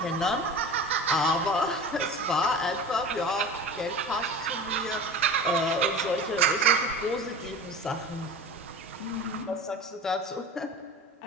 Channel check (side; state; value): both; normal; correlation 0.35